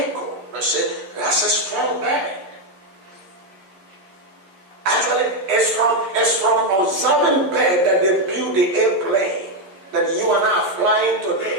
They said, that's a strong bird. Actually, it's from observing bird that they build the airplane that you and I are flying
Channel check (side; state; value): left; late; 11 ms